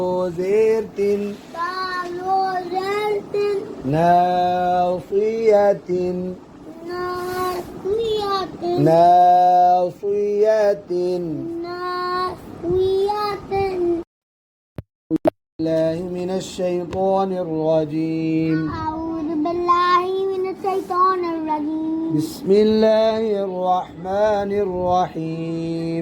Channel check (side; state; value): both; identical; correlation 1.00